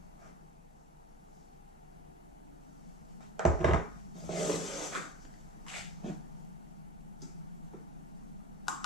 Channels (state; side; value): normal; both; correlation 0.34